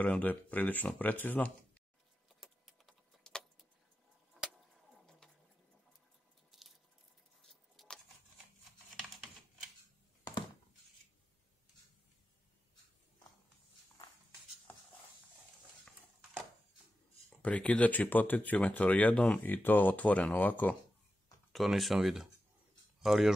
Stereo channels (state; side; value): normal; both; correlation 0.91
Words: da je prilično precizno. Prekidač i potenciometar jednom i to otvoreno ovako, to nisam vidio, ali